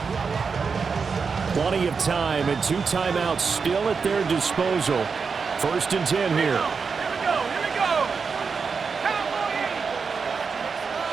Plenty of time and 2 timeouts still at their disposal. 1st and 10 here. Here we go.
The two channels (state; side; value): quieter; left; 5.3 dB